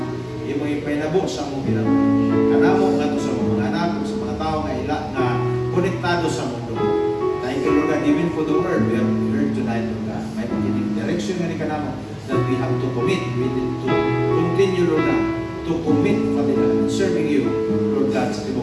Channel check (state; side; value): identical; both; correlation 1.00